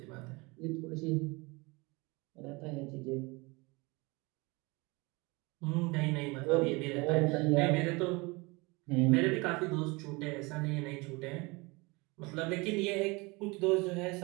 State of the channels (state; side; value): quieter; left; 25.7 dB